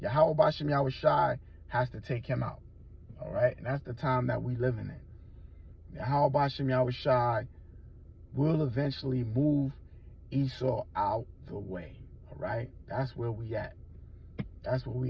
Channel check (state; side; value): identical; both; correlation 1.00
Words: Yahweh Bashim Yahushai has to take him out. All right, and that's the time that we living in. Yahweh Bashim Yahushai will eventually move Esau out the way. All right, that's where we at. That's where